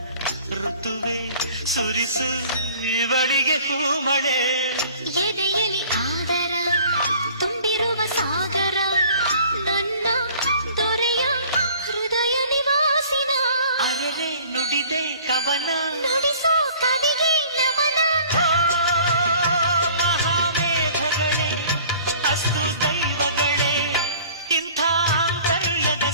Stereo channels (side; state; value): both; inverted; correlation -0.50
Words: ಋತುವೆ ಸುರಿಸು ಇವಳಿಗೆ ಹೂಮಳೆ ಎದೆಯಲಿ ಆದರ ತುಂಬಿರುವ ಸಾಗರ ನನ್ನ ದೊರೆಯ ಹೃದಯ ನಿವಾಸಿನ ಅರೆರೆ ನುಡಿದೆ ಕವನ ನುಡಿಸೋ ಕವಿಗೆ ನಮನ ಮಹಾಮೇಘಗಳೇ ಅಸ್ತು ದೈವಗಳೇ ಇಂಥ ಆಂತರ್ಯದ